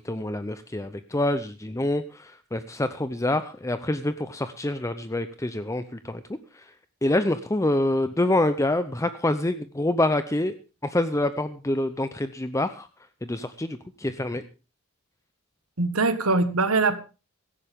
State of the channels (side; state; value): both; normal; correlation 0.60